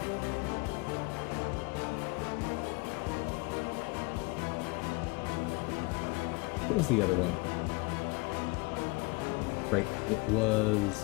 What was the other one? Right, it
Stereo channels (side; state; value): right; quieter; 27.0 dB